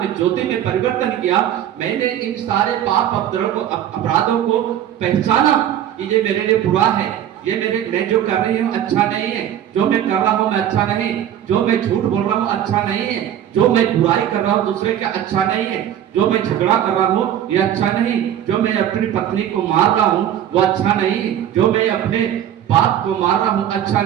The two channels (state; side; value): quieter; left; 10.7 dB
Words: ज्योति में परिवर्तन किया, मैंने इन सारे पाप अपराधों को पहचाना कि ये मेरे लिए बुरा है, ये मैं जो कर रही हूँ अच्छा नहीं है, जो मैं कर रहा हूँ मैं अच्छा नहीं, जो मैं झूठ बोल रहा हूँ अच्छा नहीं है, जो मैं बुराई कर रहा हूँ दूसरे का अच्छा नहीं है, जो मैं झगड़ा कर रहा हूँ ये अच्छा नहीं, जो मैं अपनी पत्नी को मार रहा हूँ वो अच्छा नहीं, जो मैं अपने बाप को मार रहा हूँ अच्छा